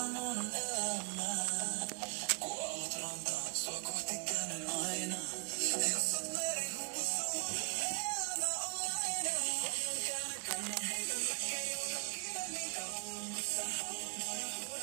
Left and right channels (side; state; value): left; quieter; 36.2 dB